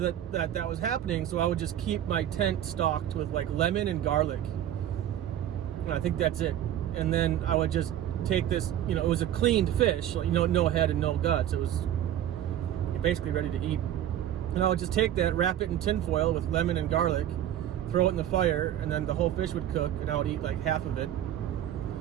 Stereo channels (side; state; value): left; quieter; 11.3 dB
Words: was happening, so I would just keep my tent stocked with like lemon and garlic. And I think that's it. And then I would just take this, it was a cleaned fish, no head and no guts. It was basically ready to eat. And I would just take that, wrap it in tin foil with lemon and garlic, throw it in the fire, and then the whole fish would cook, and I would eat like half of it.